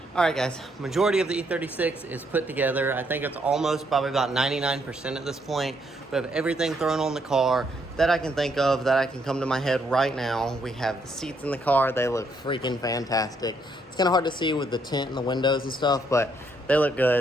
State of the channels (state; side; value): normal; both; correlation 0.73